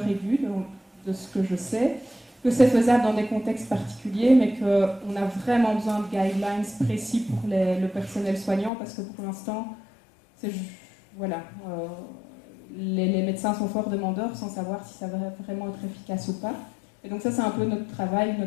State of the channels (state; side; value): drops out; right; at 8.7 s